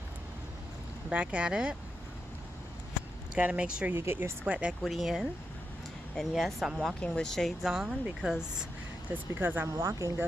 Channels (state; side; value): normal; both; correlation 0.86